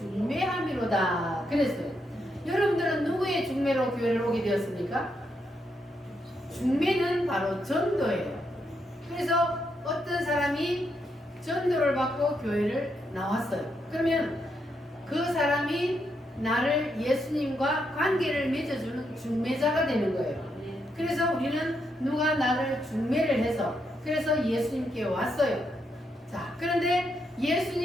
그랬어요. 여러분들은 누구의 중매로 교회를 오게 되었습니까? 중매는 바로 전도예요. 그래서 어떤 사람이 전도를 받고 교회를 나왔어요. 그러면 그 사람이 나를 예수님과 관계를 맺어주는 중매자가 되는 거예요. 그래서 우리는 누가 나를 중매를 해서 그래서 예수님께 왔어요. 자, 그런데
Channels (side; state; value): both; normal; correlation 0.80